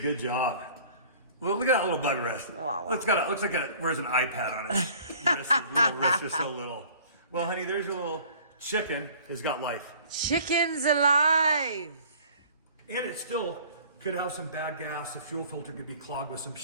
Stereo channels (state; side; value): inverted; both; correlation -0.50